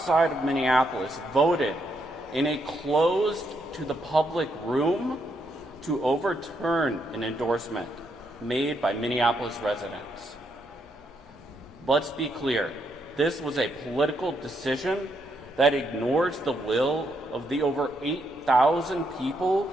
of Minneapolis voted in a closed to the public room to overturn an endorsement made by Minneapolis residents. Let's be clear, this was a political decision that ignores the will of the over 8,000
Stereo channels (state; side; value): normal; both; correlation 0.77